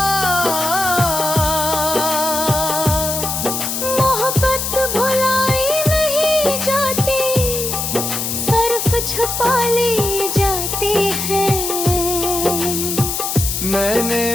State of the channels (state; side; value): noise; left; hiss, 2 dB below the sound